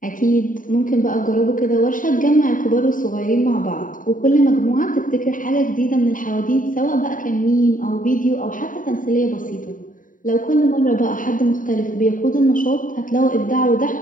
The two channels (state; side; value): late; right; 0.39 ms